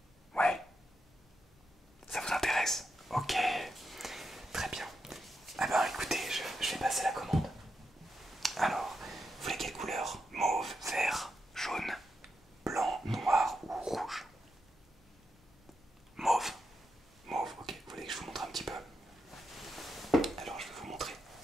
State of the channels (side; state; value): both; normal; correlation 0.85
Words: Ouais. Ça vous intéresse? Ok. Très bien. Ah ben écoutez, je vais passer la commande. Alors, vous voulez quelle couleur? Mauve, vert, jaune, blanc, noir ou rouge? Mauve. Mauve, ok. Vous voulez que je vous montre un petit peu? Alors je vais vous montrer.